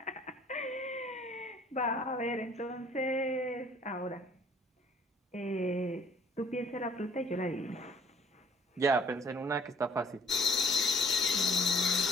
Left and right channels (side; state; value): both; normal; correlation 0.57